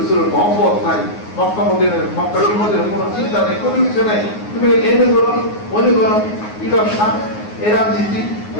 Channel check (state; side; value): late; right; 9.5 ms